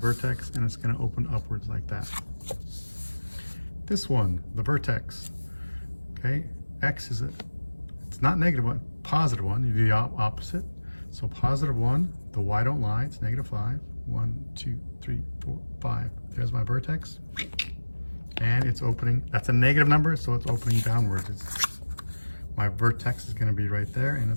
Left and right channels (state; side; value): inverted; both; correlation -1.00